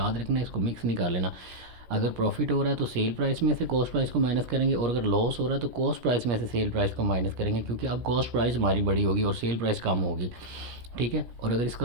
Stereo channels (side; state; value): left; late; 17 ms